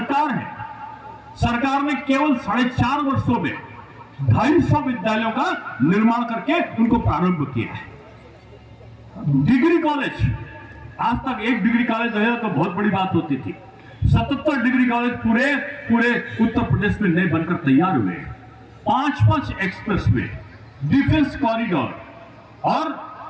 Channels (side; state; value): both; identical; correlation 1.00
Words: है, सरकार ने केवल 4.5 वर्षों में 250 विद्यालयों का निर्माण करके उनको प्रारंभ किया है। डिग्री कॉलेज, आज तक एक डिग्री कॉलेज रहे तो बहुत बड़ी बात होती थी। 77 डिग्री कॉलेज पूरे उत्तर प्रदेश में नए बनकर तैयार हुए। 5 एक्सप्रेसवे, डिफेंस कॉरिडोर और